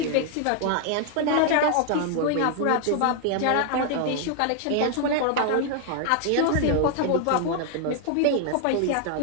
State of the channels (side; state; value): both; different; correlation 0.00